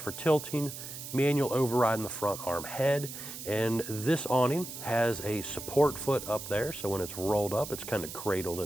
tilting, manual override in the front arm head, and this awning has a support foot up there, so when it's rolled up, it's kind of cradled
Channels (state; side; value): noise; right; hiss, 10 dB below the sound